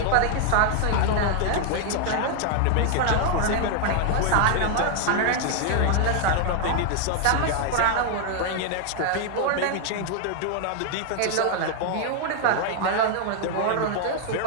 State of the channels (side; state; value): both; different; correlation 0.00